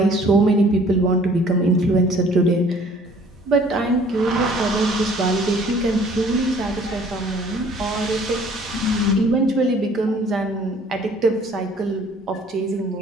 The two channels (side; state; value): both; normal; correlation 0.55